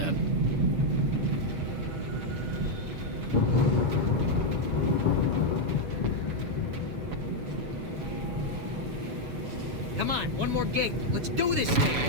Come on, one more gate. Let's do this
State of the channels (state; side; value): late; left; 7.1 ms